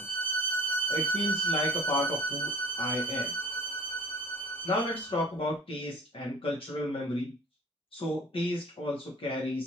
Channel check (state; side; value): normal; both; correlation 0.46